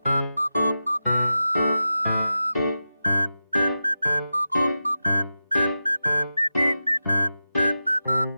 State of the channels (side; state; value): both; inverted; correlation -0.91